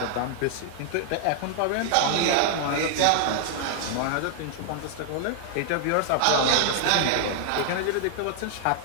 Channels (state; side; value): different; both; correlation 0.00